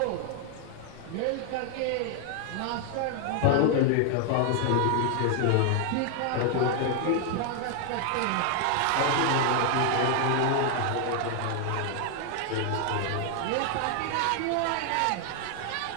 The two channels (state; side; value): different; both; correlation 0.00